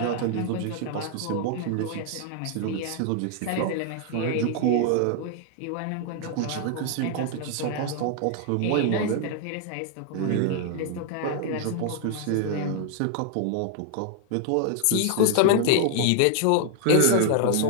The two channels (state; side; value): different; both; correlation 0.00